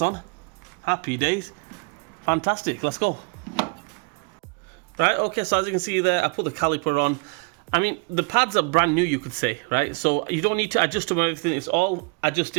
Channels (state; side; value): quieter; left; 31.6 dB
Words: on. Happy days. Fantastic, let's go. Right, okay, so as you can see there, I put the caliper on. I mean, the pads are brand new, you could say, right? So you don't need to adjust them or anything. It's all